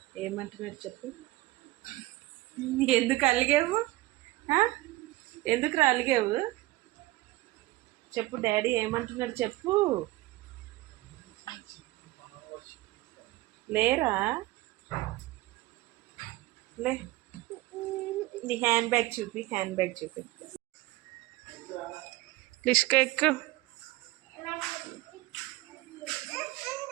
ఏమంటున్నాడు చెప్పు. ఎందుకు అలిగావు? ఎందుకు అలిగావు చెప్పు. డాడీ ఏమంటున్నాడు చెప్పు. లేరా? లే, నీ హ్యాండ్ బ్యాగ్ చూపి. లిష్క ఎక్కు.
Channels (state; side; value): quieter; left; 19.1 dB